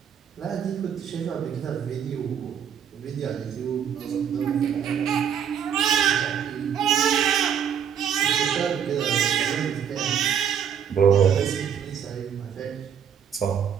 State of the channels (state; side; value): quieter; left; 8.2 dB